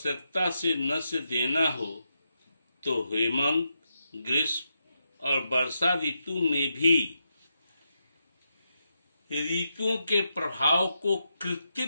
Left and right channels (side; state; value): both; inverted; correlation -0.84